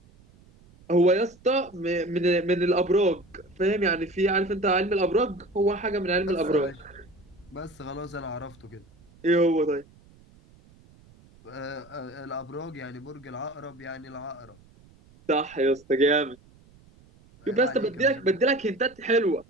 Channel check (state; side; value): noise; right; rumble, 27 dB below the sound